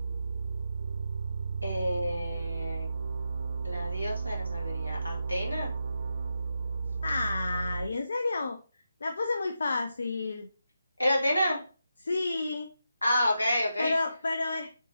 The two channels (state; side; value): inverted; both; correlation -0.87